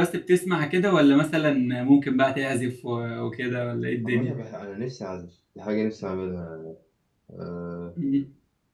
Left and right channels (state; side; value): identical; both; correlation 1.00